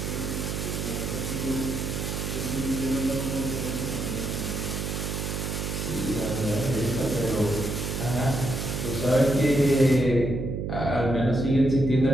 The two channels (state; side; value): noise; right; hum, 3 dB below the sound